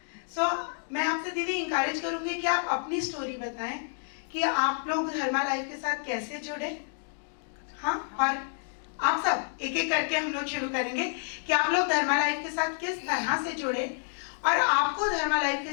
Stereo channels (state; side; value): silent; right; digital silence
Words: मैं आपसे दीदी इंकरेज करूंगी कि आप अपनी स्टोरी बताएं कि आप लोग धर्मा लाइफ के साथ कैसे जुड़े। हाँ, और आप सब एक एक करके हम लोग शुरू करेंगे कि आप लोग धर्मा लाइफ के साथ किस तरह से जुड़े और आपको धर्मा लाइफ